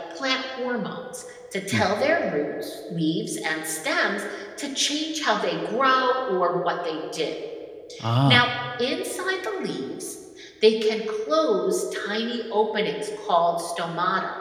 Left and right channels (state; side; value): identical; both; correlation 1.00